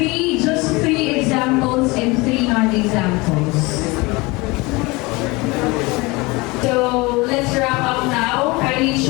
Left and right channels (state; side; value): quieter; right; 24.2 dB